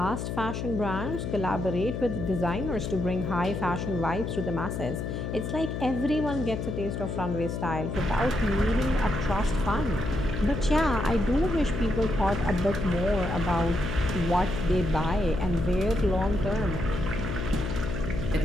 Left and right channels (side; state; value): left; noise; hum, 4 dB below the sound